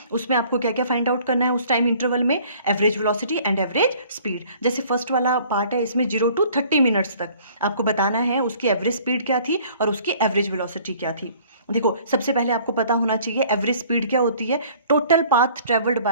उसमें आपको क्या क्या फाइंड आउट करना है उस टाइम इंटरवल में? Average velocity and average speed. जैसे फर्स्ट वाला पार्ट है, इसमें 0 to 30 मिनट्स तक आपको बताना है उसकी एवरेज स्पीड क्या थी और उसकी एवरेज वेलोसिटी क्या थी। देखो, सबसे पहले आपको पता होना चाहिए एवरेज स्पीड क्या होती है। Total path travelled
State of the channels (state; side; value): inverted; both; correlation -0.54